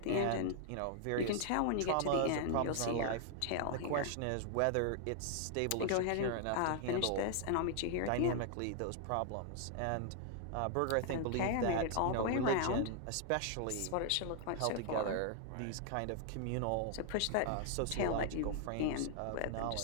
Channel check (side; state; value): both; different; correlation 0.00